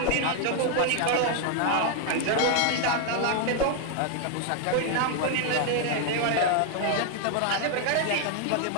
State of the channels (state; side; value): different; both; correlation 0.00